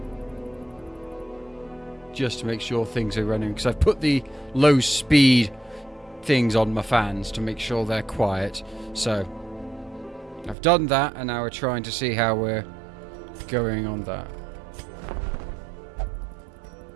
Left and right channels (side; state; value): left; drops out; at 10.6 s